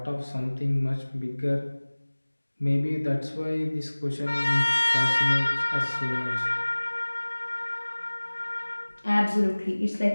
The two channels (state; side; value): inverted; both; correlation -1.00